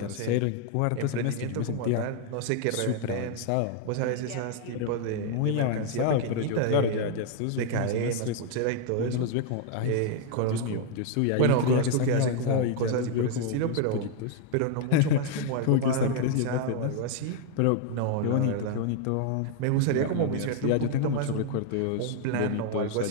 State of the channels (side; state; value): both; different; correlation 0.00